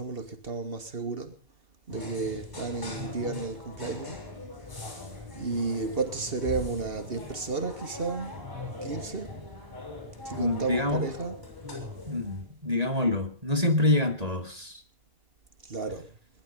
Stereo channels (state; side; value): late; left; 2.7 ms